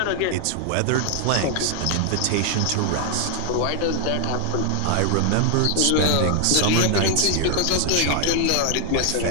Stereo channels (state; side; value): different; both; correlation 0.00